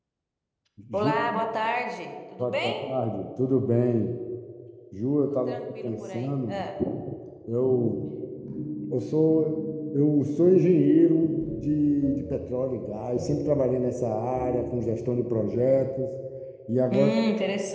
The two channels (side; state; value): both; identical; correlation 1.00